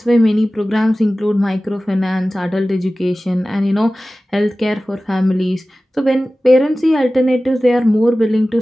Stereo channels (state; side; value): normal; both; correlation 0.96